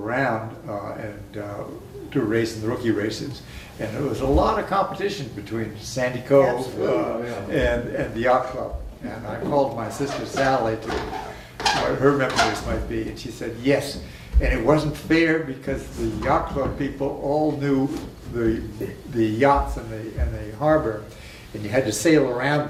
and do race in the rookie races. And there was a lot of competition between Sandy Cove and the yacht club. And I called my sister Sally to what her memories might be, and she said yes. And it wasn't fair because the yacht club people all knew the yachts in the harbor, and you had to sail around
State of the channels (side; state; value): both; identical; correlation 1.00